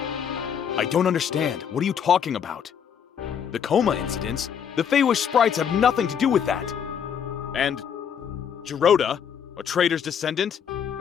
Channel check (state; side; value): quieter; right; 7.9 dB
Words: I don't understand. What are you talking about? The coma incidents? The Feywish sprites have nothing to do with that. And Giroda, a traitor's descendant?